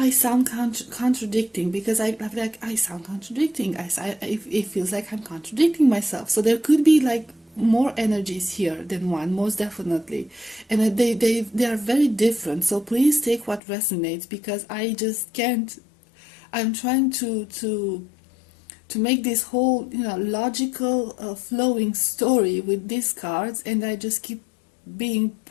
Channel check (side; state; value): right; drops out; at 13.6 s